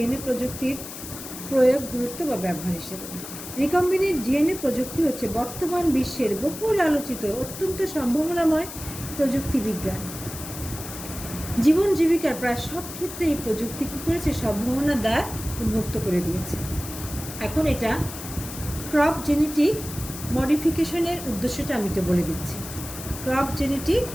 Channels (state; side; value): noise; left; hiss, 11 dB below the sound